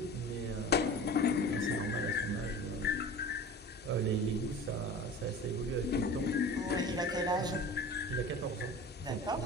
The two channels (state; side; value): normal; both; correlation 0.37